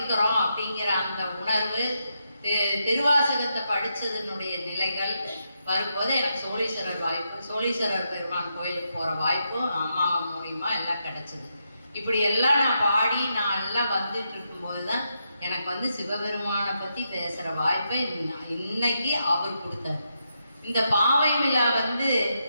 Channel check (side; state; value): both; inverted; correlation -0.82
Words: அப்படிங்கிற அந்த உணர்வு, திருவாசகத்தை படிச்சதனுடைய நிலைகள் வரும்போது எனக்கு சோழீஸ்வரர் பெருமான் கோயிலுக்கு போற வாய்ப்பும் அம்மா மூலியமா எல்லாம் கிடைச்சது. இப்படி எல்லாம் நான் பாடி நான் எல்லாம் வந்துட்டு இருக்கும்போதுதான் எனக்கு வந்து சிவபெருமானை பத்தி பேசுற வாய்ப்பை இன்னைக்கு அவர் கொடுத்தாரு. இந்த பாவை விழா வந்து